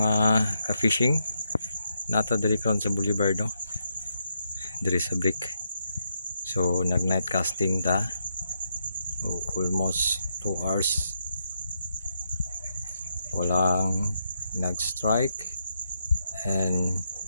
ka-fishing. Nata diri karon sa Boulevard no. Diri sa Brick. So nag night casting ta. Almost 2 hours. Walang nag-strike and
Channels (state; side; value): inverted; both; correlation -0.81